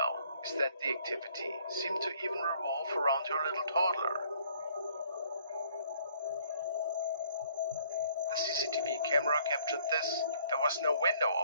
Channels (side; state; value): both; inverted; correlation -0.60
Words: is that the activity seemed to even revolve around her little toddler. The CCTV camera captured this. There was no window